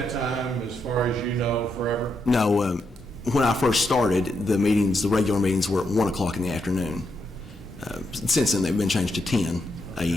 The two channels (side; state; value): both; normal; correlation 0.81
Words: that time, as far as you know, forever? No, when I first started, the regular meetings were at 1 o'clock in the afternoon. Since then, they've been changed to 10